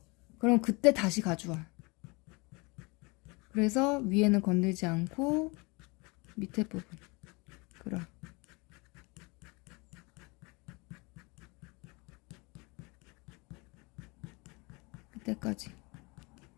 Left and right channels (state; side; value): quieter; right; 27.4 dB